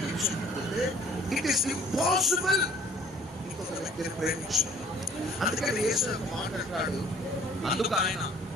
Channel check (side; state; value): both; normal; correlation 0.55